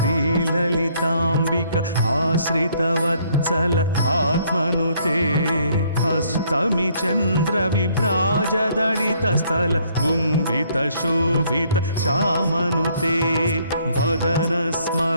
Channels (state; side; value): inverted; both; correlation -0.65